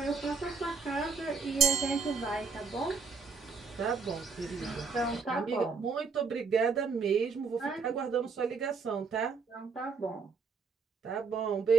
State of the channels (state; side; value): quieter; left; 5.0 dB